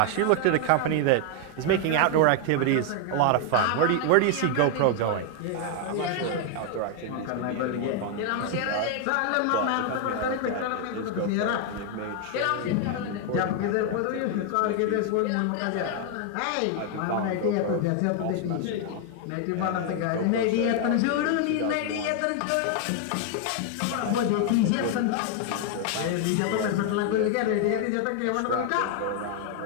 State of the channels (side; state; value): both; different; correlation 0.00